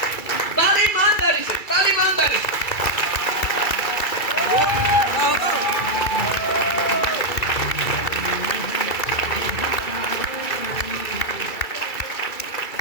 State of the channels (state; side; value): late; right; 2.3 ms